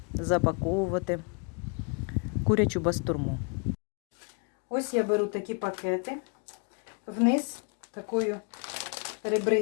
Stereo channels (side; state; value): right; quieter; 37.2 dB